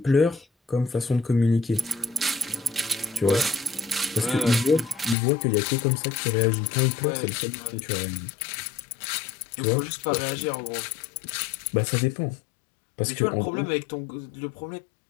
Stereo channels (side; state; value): right; drops out; at 5.2 s